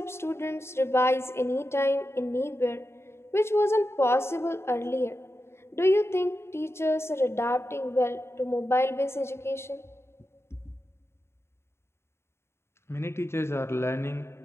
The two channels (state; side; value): late; right; 0.12 ms